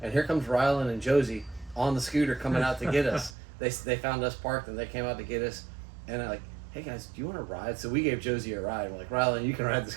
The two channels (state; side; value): drops out; left; at 3.3 s